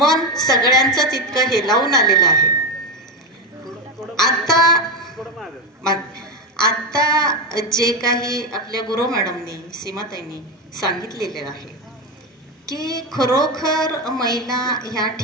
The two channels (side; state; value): both; normal; correlation 0.13